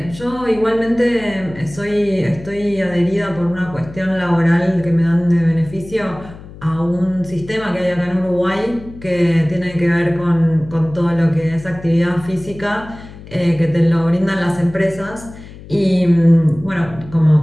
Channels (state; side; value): noise; left; hum, 17 dB below the sound